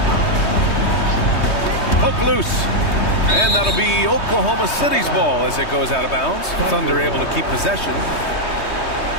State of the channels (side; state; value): right; late; 3.2 ms